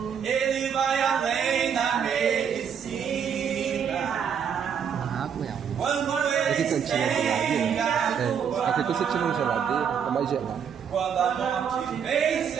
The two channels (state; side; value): quieter; left; 7.6 dB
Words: ele vai além da medicina, quando ele estende a tua mão, aqui você tira uma geladeira, é mais gelado. quando a morte